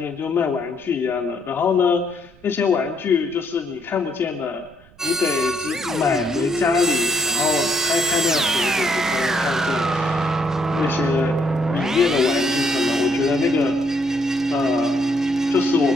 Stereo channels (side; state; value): right; noise; rumble, 27 dB below the sound